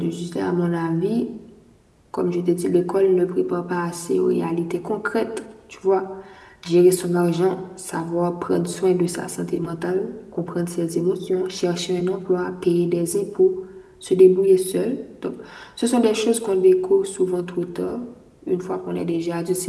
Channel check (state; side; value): identical; both; correlation 1.00